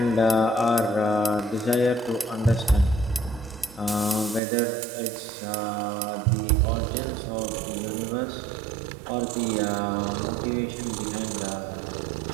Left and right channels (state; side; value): drops out; left; at 4.4 s